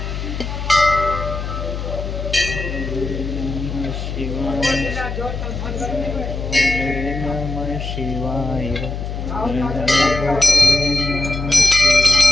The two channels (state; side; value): noise; left; hum, 5 dB below the sound